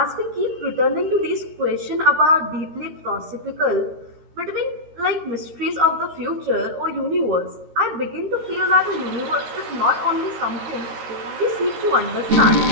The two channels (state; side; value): late; left; 13 ms